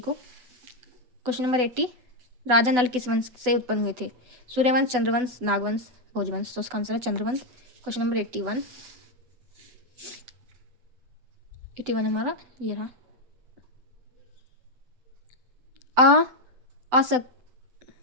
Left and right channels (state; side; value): late; left; 8.0 ms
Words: को। क्वेश्चन नंबर 80, राजा नल किस वंश से उत्पन्न हुए थे? सूर्यवंश, चंद्रवंश, नागवंश, भोजवंश। तो इसका आंसर है चंद्रवंश। क्वेश्चन नंबर 81 हमारा ये रहा।